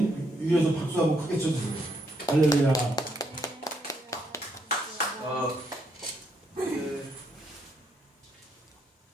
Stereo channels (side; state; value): both; normal; correlation 0.75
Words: 위에서 박수 한번 크게 쳐주세요. 할렐루야. 네.